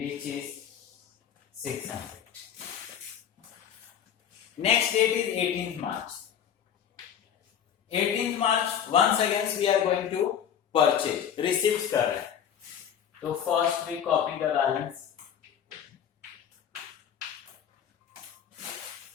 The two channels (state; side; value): quieter; right; 8.8 dB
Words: is 600. Next date is 18th March. 18th March once again we are going to purchase. Receipts कर रहे हैं, तो first we copy the balance.